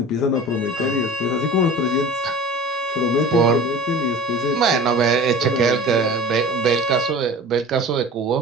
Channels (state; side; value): normal; both; correlation 0.38